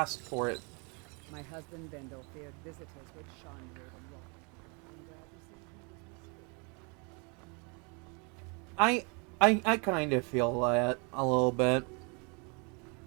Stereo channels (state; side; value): quieter; left; 33.2 dB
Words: for it. My husband Bendel feared visitors would shine through the rock. I'm glad to see he was mistaken. I kind of feel that a little bit.